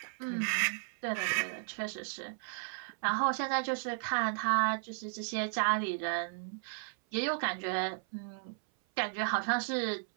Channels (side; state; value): left; silent; 55 dB below the other